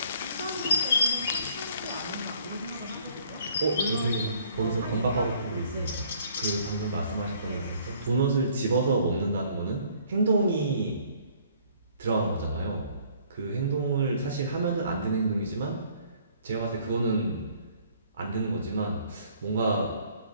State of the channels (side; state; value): both; inverted; correlation -0.59